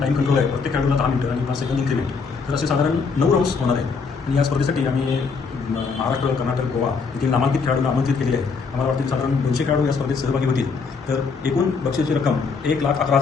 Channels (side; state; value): right; quieter; 5.0 dB